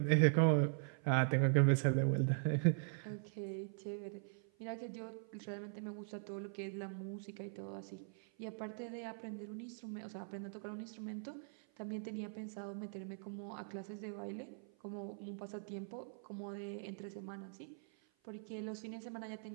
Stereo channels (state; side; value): silent; left; 50 dB below the other